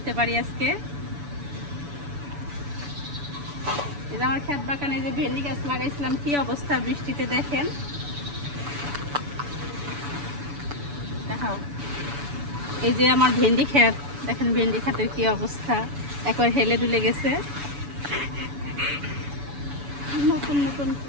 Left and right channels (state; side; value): late; left; 7.0 ms